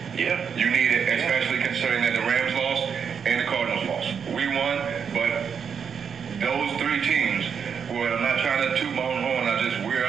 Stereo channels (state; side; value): quieter; left; 6.9 dB